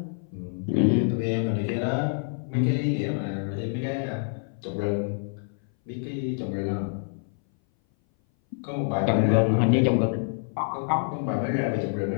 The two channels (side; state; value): right; silent; 58 dB below the other